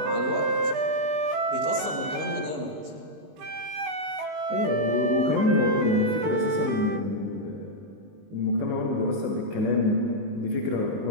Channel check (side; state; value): left; late; 19 ms